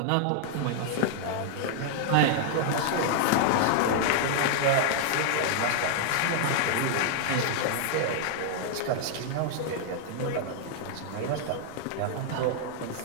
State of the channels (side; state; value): both; different; correlation 0.00